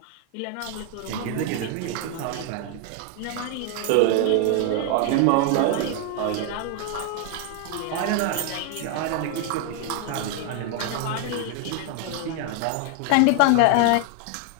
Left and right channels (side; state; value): both; different; correlation 0.00